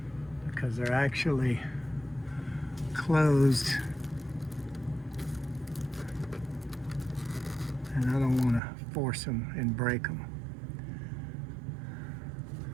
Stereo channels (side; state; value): left; drops out; at 8.6 s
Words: because they're actually closed and I don't want to force them and break them.